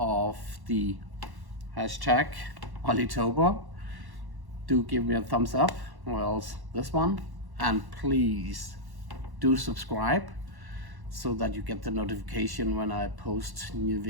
the hashtag Olitober, do give me a thumbs up, or else this one, and please do subscribe so that you get the notification when I post new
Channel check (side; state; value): left; late; 1.1 ms